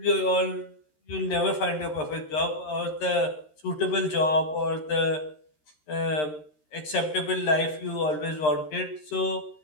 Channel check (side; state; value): right; late; 13 ms